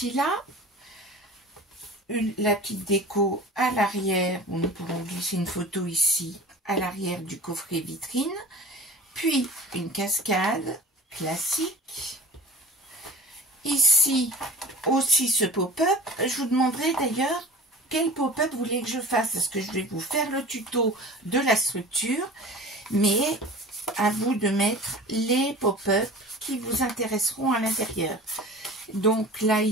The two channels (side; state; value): both; normal; correlation 0.39